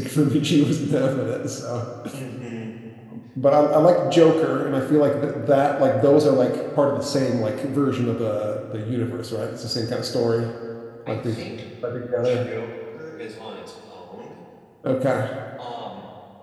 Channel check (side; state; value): both; identical; correlation 1.00